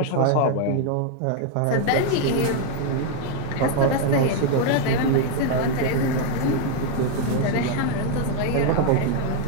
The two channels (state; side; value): different; both; correlation 0.01